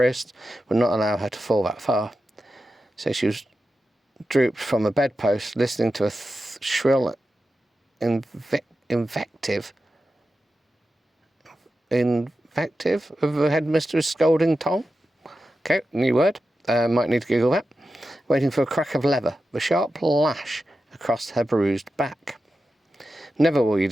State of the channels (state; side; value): normal; both; correlation 0.91